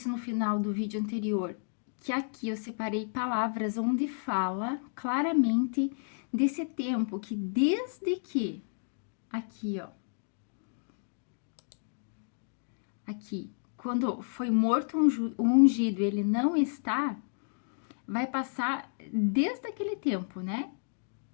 no final do vídeo anterior, que aqui eu separei palavras onde fala claramente desse tempo que desde que, aqui ó, aqui, quando foi morto o ungido, ele não está, vai passar desde aquele tempo, né?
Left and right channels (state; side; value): silent; right; digital silence